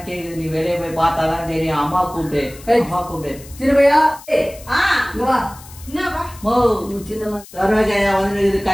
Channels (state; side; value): noise; left; hiss, 19 dB below the sound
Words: கேக்குது, நீ வெளியே போய் பார்த்தாதான் தெரியும். அம்மா கூப்பிட்டு, அம்மா கூப்பிட்டு. சின்னப்பையா வா. மோ சின்ன சரோஜாயா வந்து